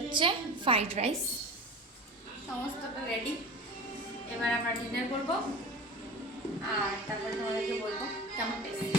ফ্রাইড রাইস, সমস্তটা রেডি। এবার আমরা ডিনার করব আর তারপর তোমাদেরকে বলবো কেমন টেস্ট।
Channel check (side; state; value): both; normal; correlation 0.35